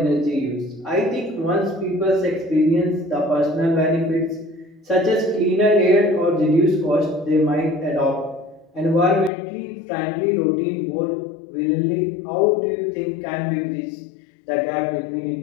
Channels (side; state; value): right; drops out; at 9.3 s